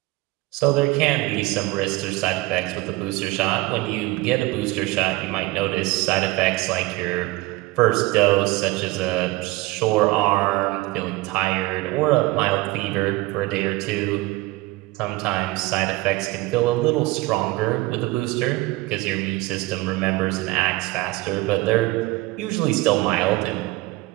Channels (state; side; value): quieter; left; 20.4 dB